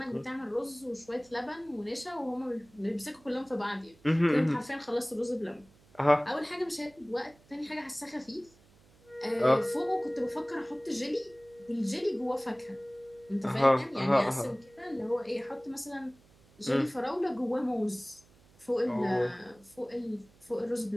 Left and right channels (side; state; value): right; noise; hum, 28 dB below the sound